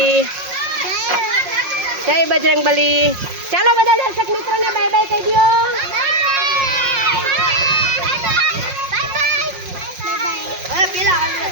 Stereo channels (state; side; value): late; left; 5.5 ms